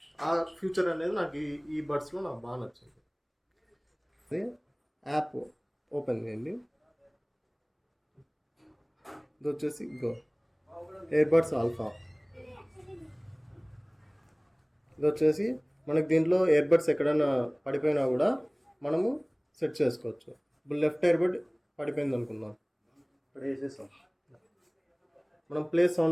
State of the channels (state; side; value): identical; both; correlation 1.00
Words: ఆ ఫ్యూచర్ అనేది నాకు ఈ బడ్స్లో నాకు బాగా నచ్చింది. యాప్ ఓపెన్ చేయండి. ఇది వచ్చేసి ఇయర్బడ్స్ ఆల్ఫా. ఇది వచ్చేసి మనకి దీంట్లో ఇయర్బడ్స్ ఎక్కడైనా పడిపోయినా కూడా మనము సెట్ చేసుకోవచ్చు. ఇప్పుడు లెఫ్ట్ ఇయర్బడ్ పడిపోయింది అనుకుందాం, ఇక్కడ వేసేసాం. మనం ప్లే